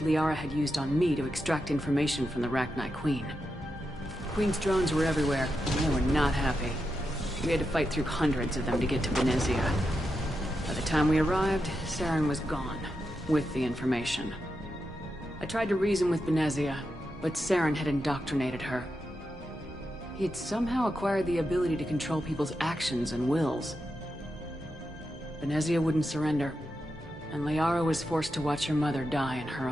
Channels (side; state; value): both; normal; correlation 0.87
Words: Liara had used on me to extract information from the Rachni Queen. Queen's drones were everywhere, and they were not happy. We had to fight through hundreds of them to get to Benezia. By the time we arrived, Saren was gone, with the information. I tried to reason with Benezia, but Saren had indoctrinated her. He had somehow acquired the ability to control people's actions and wills. Benezia wouldn't surrender, and Liara was forced to watch her mother die in her